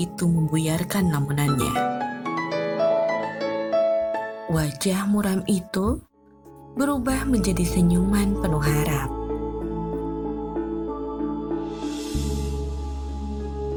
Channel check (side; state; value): both; identical; correlation 1.00